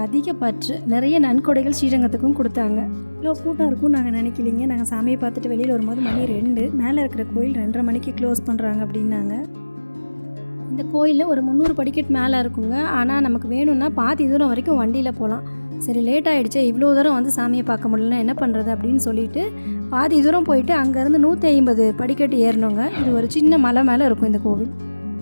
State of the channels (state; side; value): inverted; both; correlation -1.00